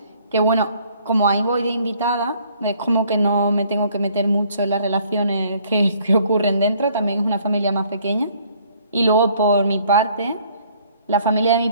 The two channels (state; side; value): inverted; both; correlation -0.61